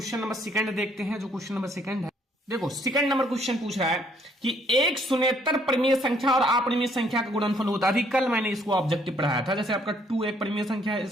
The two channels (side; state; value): both; normal; correlation 0.66